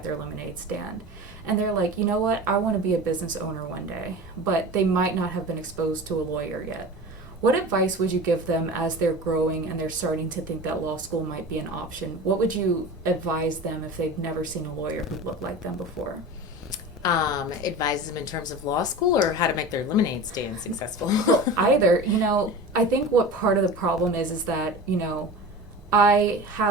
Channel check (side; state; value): both; normal; correlation 0.33